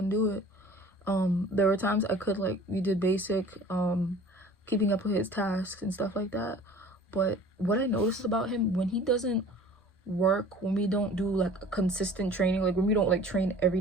do it. There were times I could, like, we did basic keeping up with his tasks and stuff like that, but what I noticed about him, when he doesn't work, when we don't do like a consistent training, like when we don't like train every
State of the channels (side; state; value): both; normal; correlation 0.46